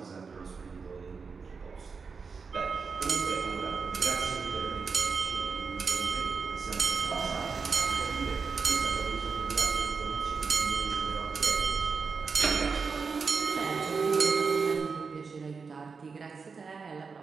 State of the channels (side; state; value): left; quieter; 5.1 dB